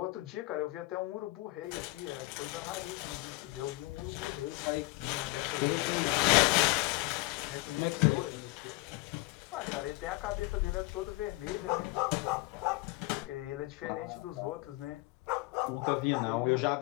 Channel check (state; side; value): quieter; right; 22.3 dB